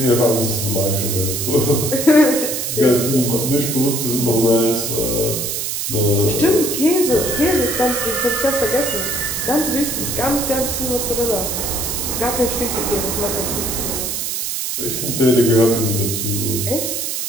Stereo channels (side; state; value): right; noise; hiss, 2 dB below the sound